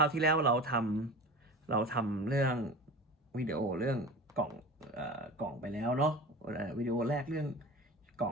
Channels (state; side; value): normal; both; correlation 0.34